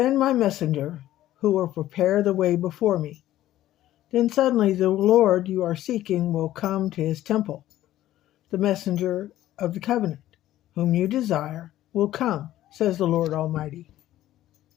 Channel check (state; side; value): quieter; right; 13.9 dB